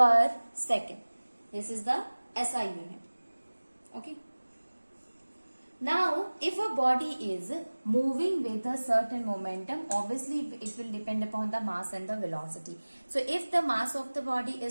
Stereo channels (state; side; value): inverted; both; correlation -1.00